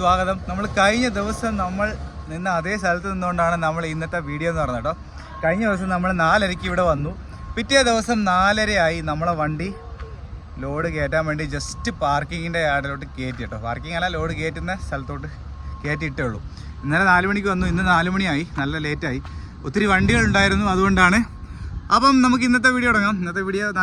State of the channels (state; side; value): identical; both; correlation 1.00